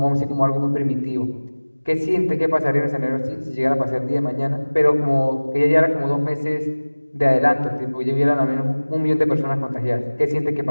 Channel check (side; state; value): both; inverted; correlation -1.00